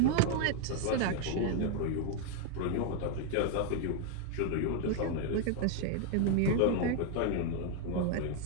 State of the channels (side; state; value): both; different; correlation 0.00